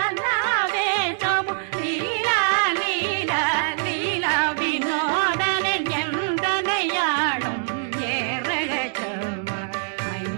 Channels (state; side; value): silent; left; digital silence